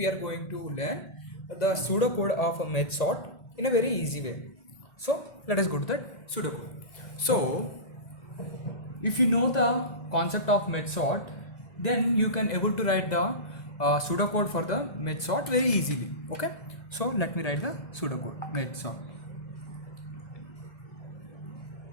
are going to learn the pseudocode of a merge sort in a very easy way. So let us go to the pseudocode. So if you know the concept of merge sort, then you can able to write the pseudocode for the merge sort very easily. Okay, so let me write the pseudocode merge sort.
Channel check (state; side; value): late; right; 2.0 ms